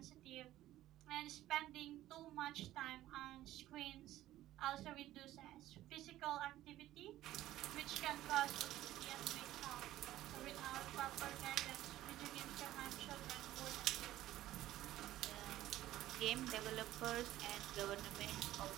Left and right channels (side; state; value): left; quieter; 14.5 dB